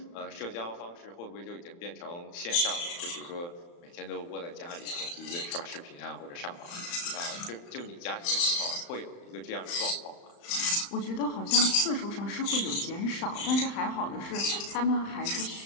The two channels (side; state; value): right; late; 35 ms